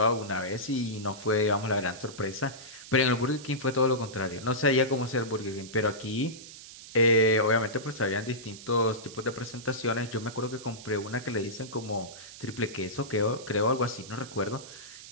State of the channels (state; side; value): noise; right; hiss, 15 dB below the sound